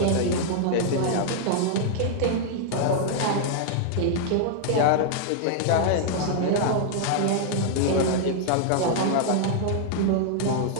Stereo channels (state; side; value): different; both; correlation -0.01